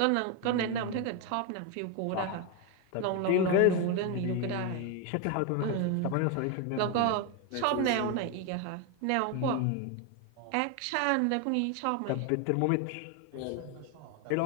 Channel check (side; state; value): both; different; correlation 0.01